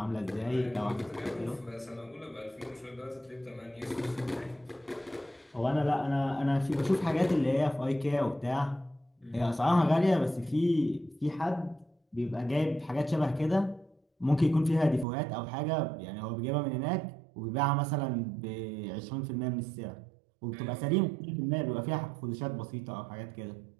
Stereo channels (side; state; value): left; drops out; at 15.1 s